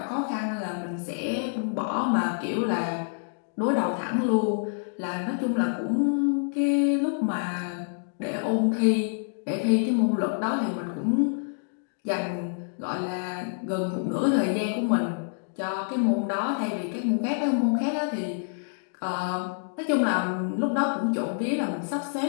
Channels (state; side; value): silent; right; digital silence